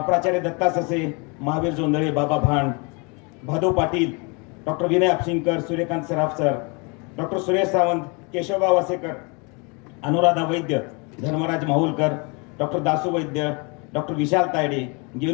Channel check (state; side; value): quieter; right; 31.8 dB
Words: दत्ता ससे, महावीर जोंधळे, बाबा भांड, भादव पाटील, डॉक्टर विनय आपशिंकर, सूर्यकांत सराफ सर, डॉक्टर सुरेश सावंत, केशवबा वासेकर, अनुराधा वैद्य, धर्मराज माहुलकर, डॉक्टर दासू वैद्य, डॉक्टर विशाल तायडे,